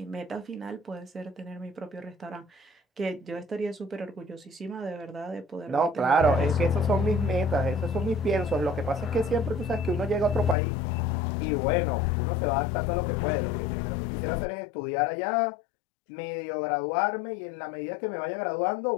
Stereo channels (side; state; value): right; drops out; at 10.6 s